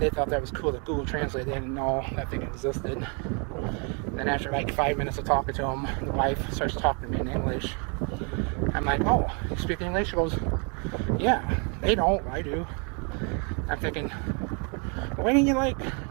thought that was cool, that Google Translate. They didn't know that thing existed. Then after like 5 minutes of talking to them, the wife starts talking to me in English. I'm like, oh, you speak English? She goes, yeah. They don't, I do. I'm thinking, why didn't you like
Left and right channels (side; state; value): left; quieter; 36.1 dB